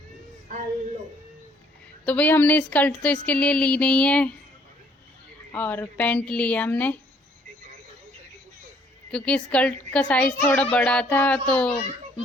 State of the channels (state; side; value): normal; both; correlation 0.63